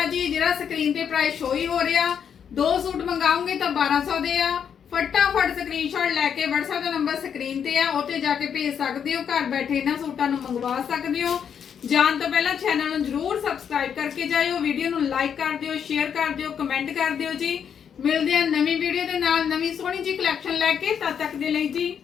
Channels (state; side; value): quieter; right; 7.9 dB